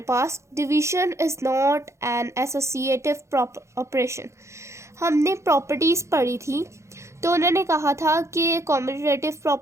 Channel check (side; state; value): left; late; 0.14 ms